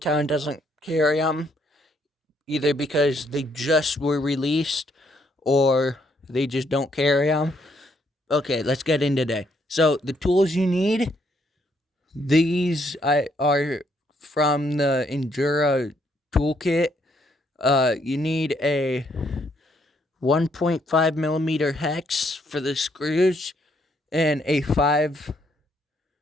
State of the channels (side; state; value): both; normal; correlation 0.72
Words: doesn't carry them, either because they just were released or they just don't carry them. Okay, let's get in today. So the tools you need, these are from the Endura toolkit. You need a 1.5 millimeter hex for the screws and a 5